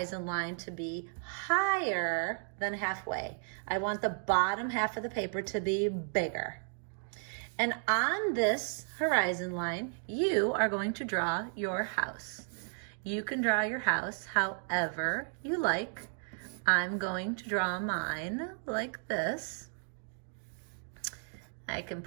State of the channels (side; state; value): left; silent; 55 dB below the other